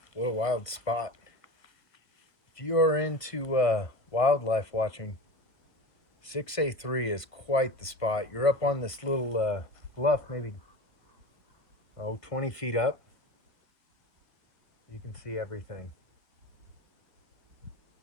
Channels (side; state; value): right; late; 1.3 ms